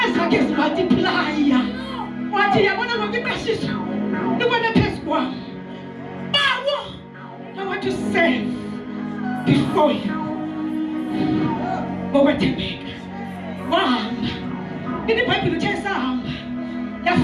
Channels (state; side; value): identical; both; correlation 1.00